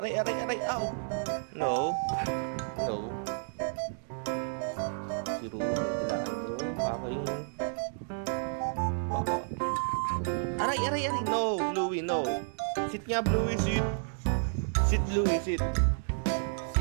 aray, aray, ow. No. No. Si Ruro, tilaan mo. Aking... Baka. Aray, aray, aray. No, Bluey, no. Sit nga, Bluey, sit. Sit, Bluey, sit.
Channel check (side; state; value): left; silent; digital silence